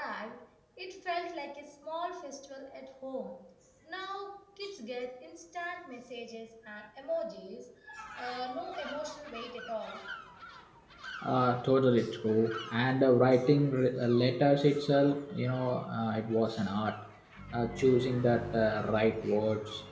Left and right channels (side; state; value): both; identical; correlation 1.00